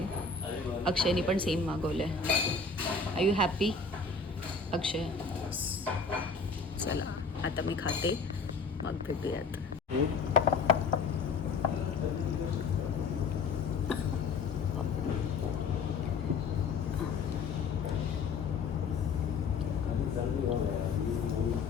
अक्षयने पण सेम मागवलं आहे. आर यू हॅपी अक्षय? चला आता मी खाते, मग भेटूयात.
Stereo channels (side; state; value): right; quieter; 4.7 dB